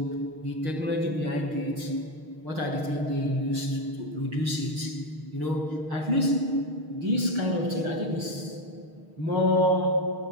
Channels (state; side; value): late; left; 6.4 ms